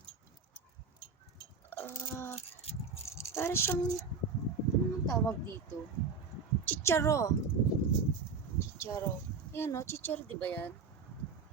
Para siyang, ano nang tawag dito? Chicharo. Chicharo. Ayan o, chicharo di ba yan?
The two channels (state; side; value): quieter; left; 5.1 dB